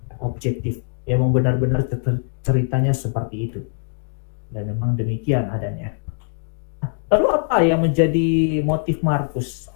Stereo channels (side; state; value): right; silent; digital silence